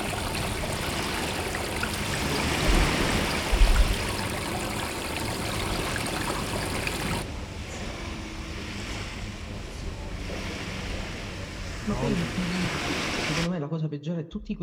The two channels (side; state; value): both; identical; correlation 1.00